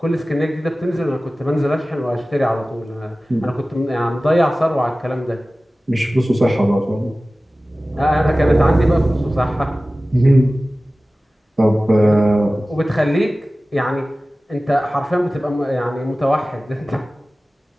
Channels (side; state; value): both; normal; correlation 0.97